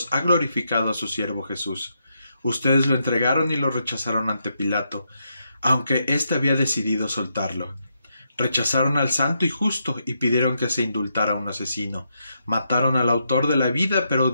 ha glorificado a su siervo Jesús. Ustedes lo entregaron y lo rechazaron ante Pilato, aunque éste había decidido soltarlo. Rechazaron al santo y justo y pidieron que se indultara a un asesino. Mataron al autor de la vida, pero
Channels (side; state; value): both; inverted; correlation -0.80